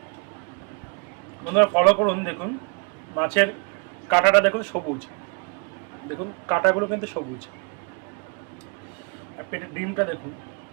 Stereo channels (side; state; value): left; quieter; 35.5 dB